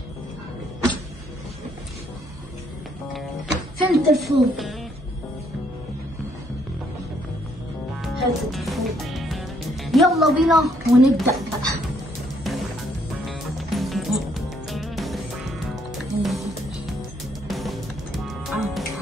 فين التليفون؟ هات التليفون يلا بينا ونبدأ بقى.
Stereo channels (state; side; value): normal; both; correlation 0.69